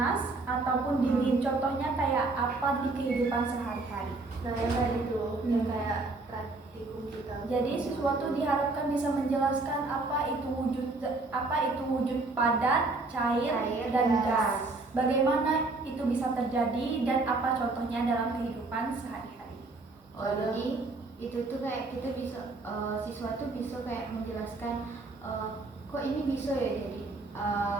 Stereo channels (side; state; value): left; quieter; 3.4 dB